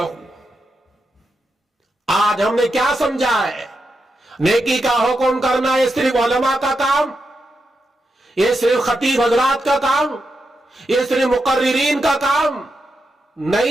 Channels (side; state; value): both; normal; correlation 0.86